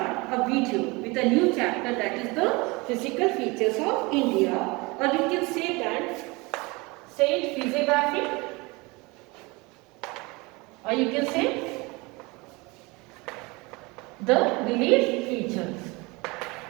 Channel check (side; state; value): left; quieter; 25.3 dB